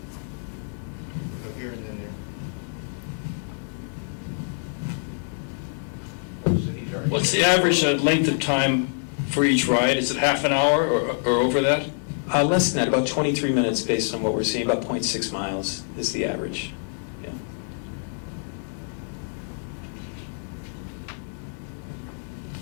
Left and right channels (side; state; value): right; silent; digital silence